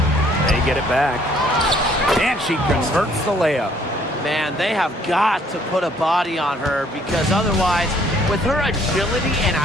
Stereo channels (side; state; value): both; normal; correlation 0.62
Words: They get it back. And she converts the layup. Man, they have got to put a body on her because otherwise, with her agility and